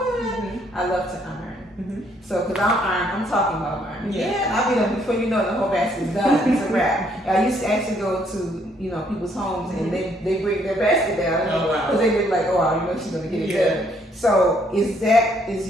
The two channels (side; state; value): both; normal; correlation 0.68